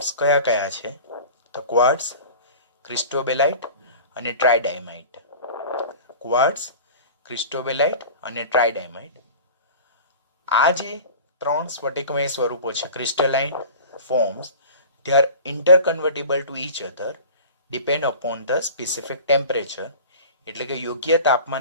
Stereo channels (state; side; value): inverted; both; correlation -0.39